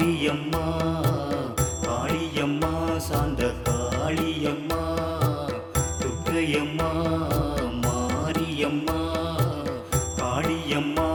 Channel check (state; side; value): identical; both; correlation 1.00